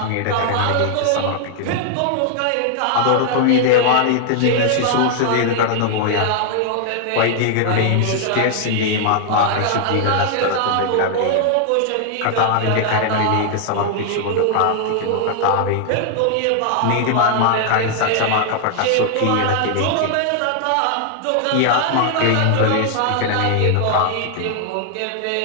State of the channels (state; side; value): different; both; correlation 0.00